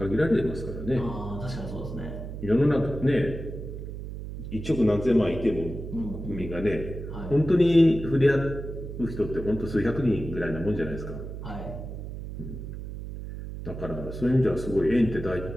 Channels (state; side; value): noise; right; hum, 8 dB below the sound